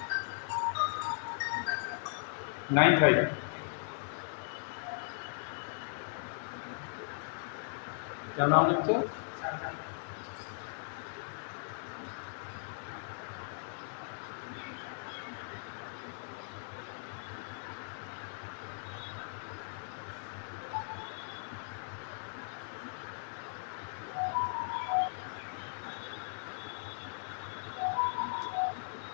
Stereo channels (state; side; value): silent; right; digital silence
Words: 95 क्या नाम लिखते हो?